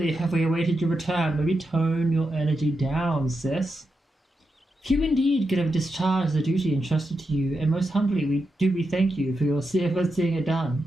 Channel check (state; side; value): normal; both; correlation 0.87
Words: have we awaited your return. Maybe tone your energy down, sis. Few indeed could have discharged the duty entrusted to you, and most humbly we thank you for your seeing it